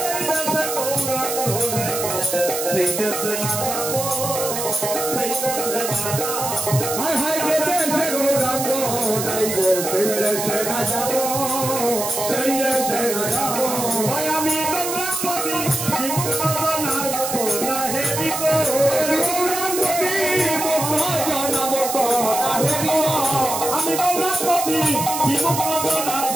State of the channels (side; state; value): right; noise; hiss, 4 dB below the sound